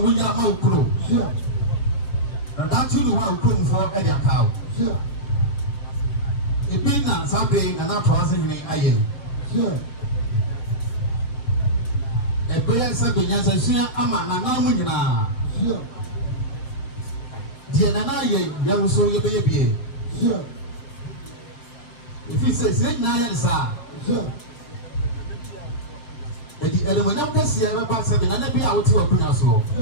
ya ma ukro that you do ha ukomfo e de akawo ebi na sabe na na to ase ni aye ebe se do nya se sua ama na na mu nyina die na na ye ya so ye be ye bie if you say na ya sa edi ele mo nyam kase e ba se na na bi a wote wakunya so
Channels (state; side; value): late; right; 5.3 ms